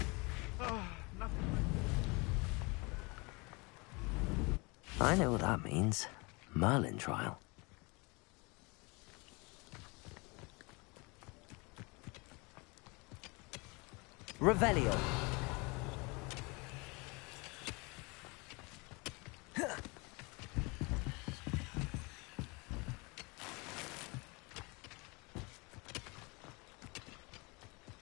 I know what that means. Merlin trial. Revelio.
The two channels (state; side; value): quieter; right; 27.9 dB